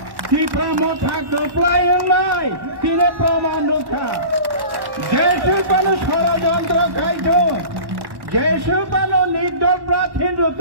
ত্রিপুরা মথা কপ্লায় তিনি প্রমাণ রক্ষা যেসব মানুষ ষড়যন্ত্র খাইত যেসব মানুষ নির্দল প্রার্থী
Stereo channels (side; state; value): left; late; 1.1 ms